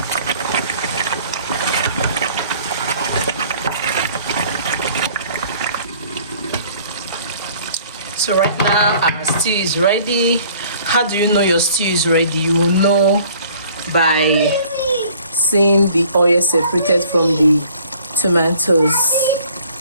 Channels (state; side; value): inverted; both; correlation -0.55